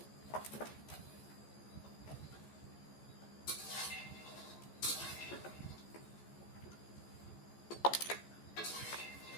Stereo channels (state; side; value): late; right; 14 ms